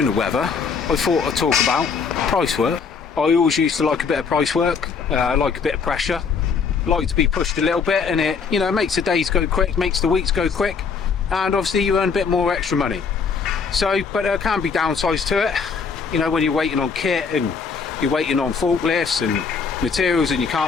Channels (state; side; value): quieter; right; 5.6 dB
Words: the weather, I thought I'd talk about price work. I always used to like a bit of price work, like a bit of pressure, like to be pushed a little bit, and it, you know, makes the days go quick, makes the weeks go quick, and obviously you earn a bit more extra money. So, but there can be downsides to it. You know, when you're waiting on kit and you're waiting on forklifts and materials and you